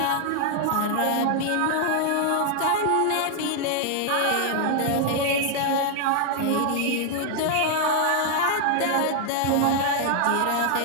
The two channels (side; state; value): both; different; correlation 0.00